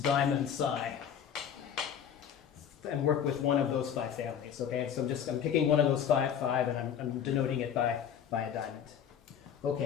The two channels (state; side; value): quieter; right; 8.5 dB